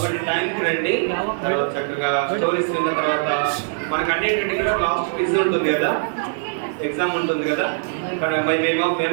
టైంకి రండి. తర్వాత చక్కగా స్టోరీస్ విన్న తర్వాత మనకు అన్నింటికి కూడా లాస్ట్ క్విజ్ ఉంటుంది కదా, ఎగ్జామ్ ఉంటుంది కదా. మేము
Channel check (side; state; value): left; silent; digital silence